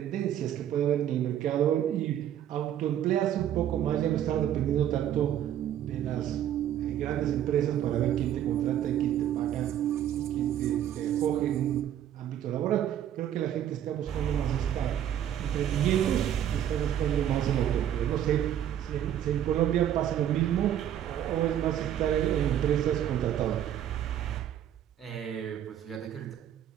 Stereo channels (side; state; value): left; quieter; 10.7 dB